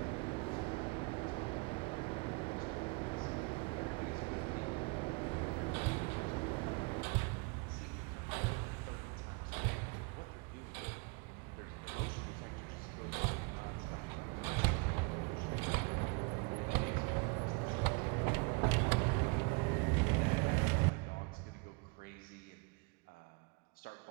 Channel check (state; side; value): quieter; left; 30.5 dB